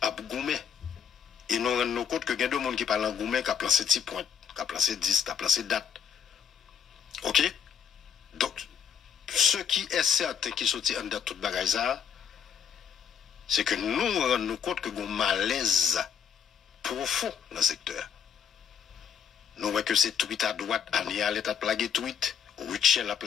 à Goumé. Et nous rendons compte que il y a deux monde qui parlent en Goumé, qui a placé 10 points, qui a placé 10, qui a placé date. Ok? Donc, ce qui est certain qui sortit en date toute bagaille, c'est que nous rendons compte que nous avons un malaise profond dans le secteur. Nous voyons que c'est tweet à droite, Anial est à plaguer tweet, Richel a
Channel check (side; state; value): right; quieter; 7.6 dB